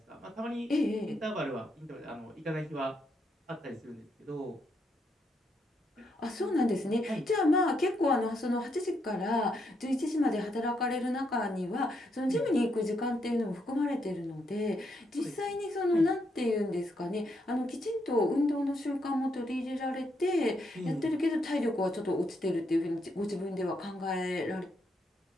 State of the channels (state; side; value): normal; both; correlation 0.77